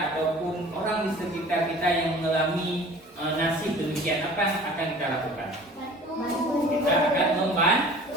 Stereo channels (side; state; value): both; normal; correlation 0.46